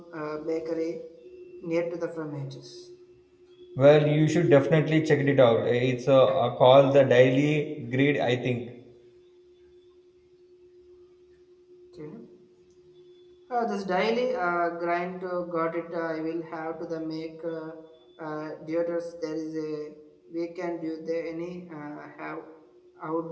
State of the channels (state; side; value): identical; both; correlation 1.00